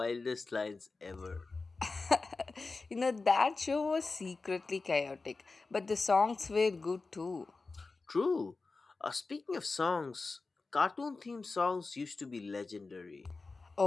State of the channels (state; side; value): quieter; right; 3.9 dB